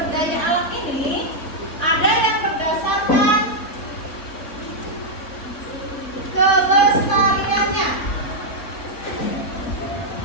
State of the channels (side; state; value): right; late; 3.6 ms